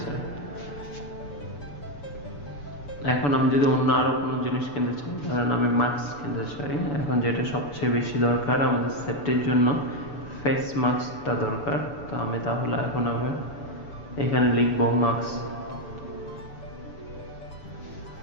এখন আমি যদি অন্য আরো কোনো জিনিস কিনতে চাই, ধরেন আমি মাস্ক কিনতে চাই, এখন যেটা সবচেয়ে বেশি দরকার আমাদের সেফটির জন্য ফেস মাস্কটা দরকার। তো আমি তাহলে এখন আমি এখানে লিখবো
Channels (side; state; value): right; late; 6.9 ms